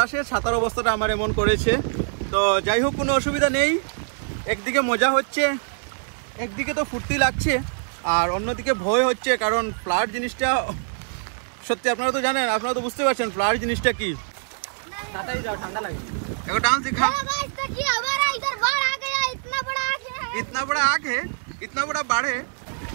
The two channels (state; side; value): silent; left; digital silence